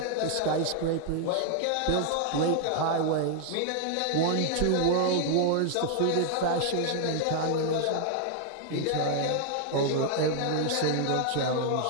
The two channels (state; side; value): different; both; correlation 0.00